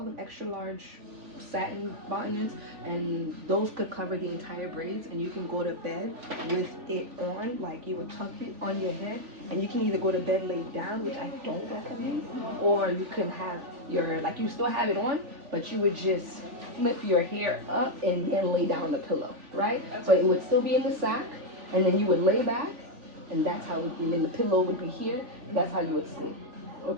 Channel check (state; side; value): late; left; 3.4 ms